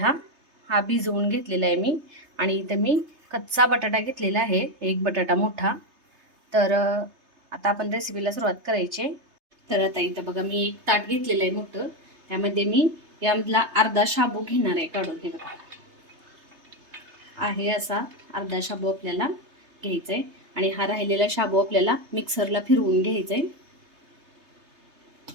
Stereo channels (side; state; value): left; late; 3.3 ms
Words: भिजवून घेतलेला आहे मी. आणि इथं मी कच्चा बटाटा घेतलेला आहे, एक बटाटा मोठा. तर आता आपण रेसिपीला सुरुवात करायची. तर आता इथं बघा मी एक ताट घेतलेलं आहे मोठं. त्यामध्ये मी यामधला अर्धा शाबू घेणार आहे, काढून हे बघा. आहे असा अर्धा शाबू आपल्याला घ्यायचा आहे आणि हा राहिलेला शाबू आपल्याला मिक्सरला फिरवून घ्यायचा आहे.